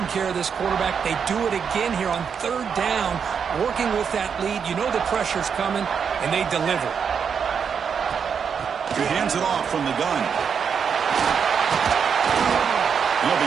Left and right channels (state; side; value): quieter; left; 6.8 dB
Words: care of this quarterback. They do it again here on 3rd down, working with that lead. You know the pressure's coming, and they deliver. He hands it off from the gun. He'll